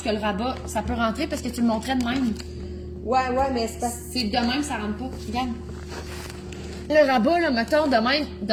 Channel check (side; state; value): both; identical; correlation 1.00